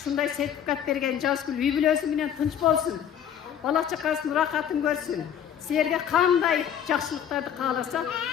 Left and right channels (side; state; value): right; quieter; 9.3 dB